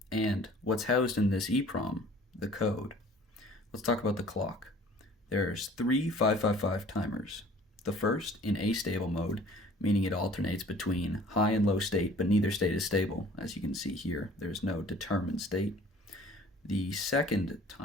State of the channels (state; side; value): normal; both; correlation 0.51